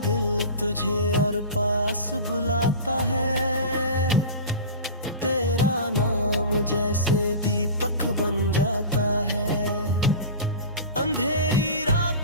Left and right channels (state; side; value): inverted; both; correlation -0.33